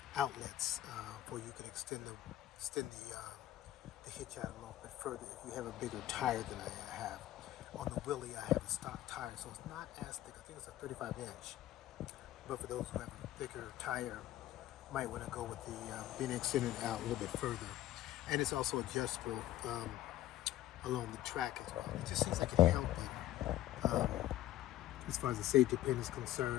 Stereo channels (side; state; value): right; quieter; 14.0 dB